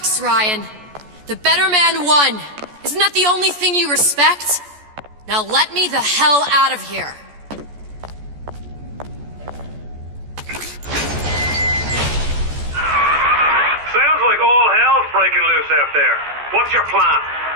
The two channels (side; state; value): left; late; 14 ms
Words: Ryan. The better man won. Isn't that the only thing you respect? Now let me the hell out of here. Sounds like all hell's breaking loose out there. What's your plan?